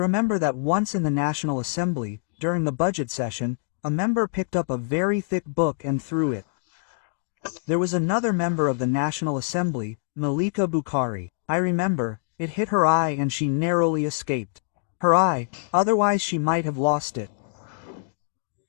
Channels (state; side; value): silent; right; digital silence